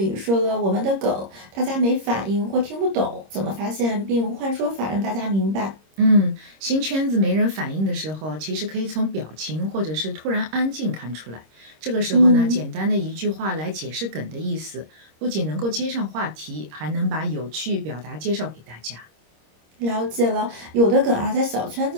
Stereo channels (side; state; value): left; late; 26 ms